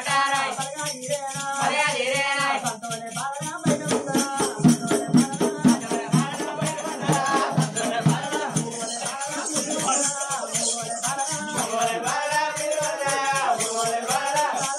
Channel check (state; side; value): identical; both; correlation 1.00